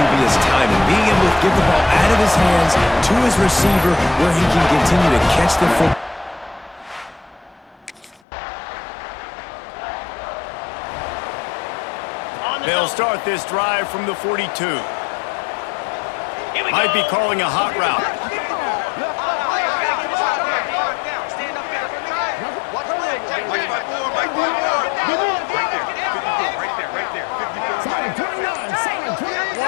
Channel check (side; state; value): right; drops out; at 8.2 s